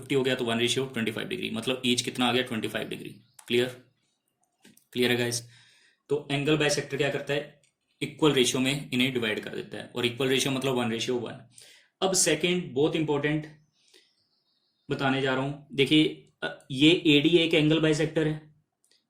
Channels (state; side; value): identical; both; correlation 1.00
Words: हो गया तो 1:25 डिग्री, मतलब ईच कितना आ गया? 25 डिग्री। क्लियर। क्लियर है गाइस? तो एंगल बाइसेक्टर क्या करता है? इक्वल रेशियो में इन्हें डिवाइड कर देता है। और इक्वल रेशियो मतलब 1:1। अब सेकेंड बहुत इंपॉर्टेंट बताने जा रहा हूं। देखिए, ये एडी एक एंगल बाइसेक्टर है।